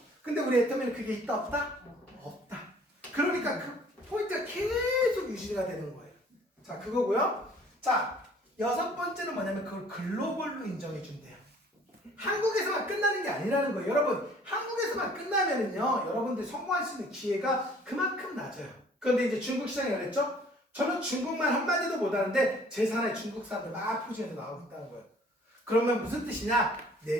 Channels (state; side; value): normal; both; correlation 0.55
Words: 근데 우리 애터미는 그게 있다 없다? 없다. 그러니까 그 포인트가 계속 유지가 되는 거예요. 자, 그거고요. 자, 여섯 번째는 뭐냐면 그걸 글로벌로 인정해 준대요. 한국에서만 끝나는 게 아니라는 거예요. 여러분, 한국에서만 끝나면은요 여러분들 성공할 수 있는 기회가 그만큼 낮아요. 그런데 이제 중국 시장이 그랬죠? 저는 중국말 한마디도 못하는데 제 산에 중국 사람들 막 포진해서 나오고 있다는 거예요. 그러면 무슨 뜻이냐? 내